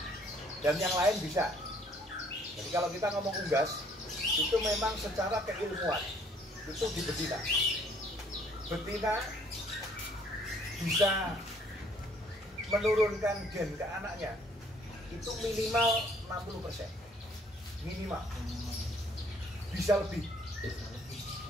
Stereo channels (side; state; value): both; normal; correlation 0.61